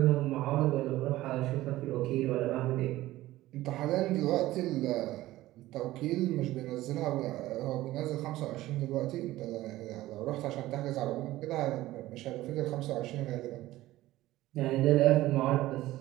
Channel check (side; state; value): left; quieter; 16.3 dB